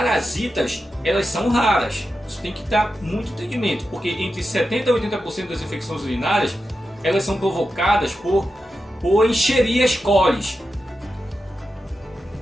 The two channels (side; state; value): both; normal; correlation 0.90